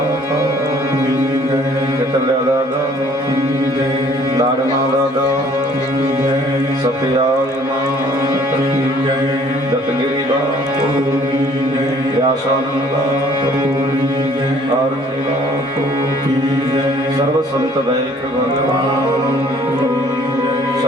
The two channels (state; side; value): normal; both; correlation 0.57